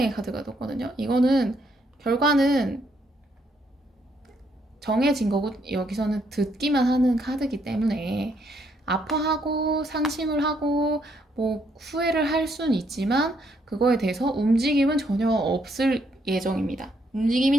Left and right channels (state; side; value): normal; both; correlation 0.73